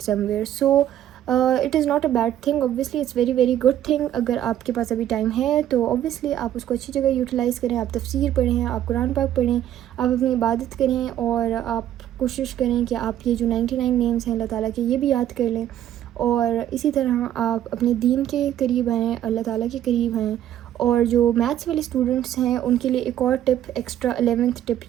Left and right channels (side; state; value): left; quieter; 11.5 dB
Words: somewhere. So it is not a bad thing, obviously it's very good thing. اگر آپ کے پاس ابھی ٹائم ہے تو اوبویسلی آپ اس کو اچھی جگہ یوٹیلائز کریں، آپ تفسیر پڑھیں، آپ قرآن پاک پڑھیں، آپ اپنی عبادت کریں، اور آپ کوشش کریں کہ آپ یہ جو 99 نیمز ہیں اللہ تعالیٰ کے یہ بھی یاد کر لیں. اور اسی طرح آپ اپنے دین کے قریب آئیں، اللہ تعالیٰ کے قریب آئیں. اور جو میتھس والے اسٹوڈنٹس ہیں ان کے لیے ایک اور ٹپ، ایکسٹرا 11th ٹپ